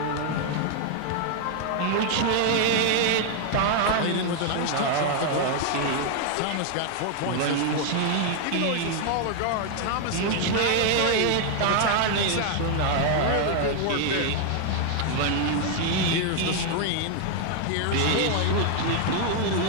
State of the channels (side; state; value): both; different; correlation 0.00